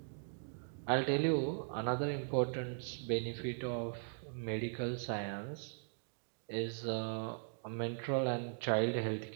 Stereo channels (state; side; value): silent; left; digital silence